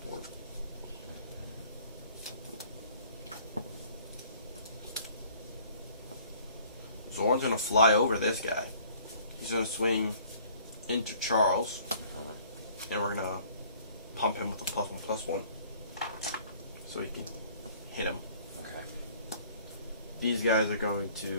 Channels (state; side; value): inverted; both; correlation -0.55